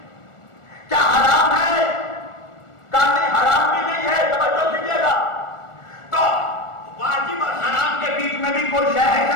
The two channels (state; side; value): late; right; 1.4 ms